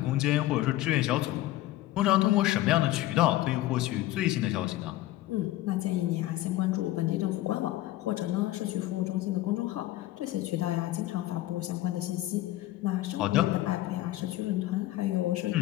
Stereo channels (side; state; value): right; quieter; 15.8 dB